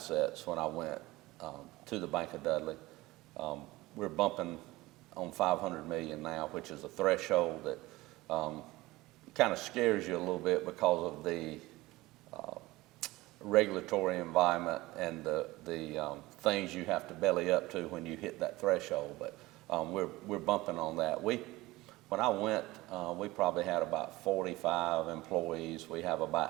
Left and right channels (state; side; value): quieter; left; 19.5 dB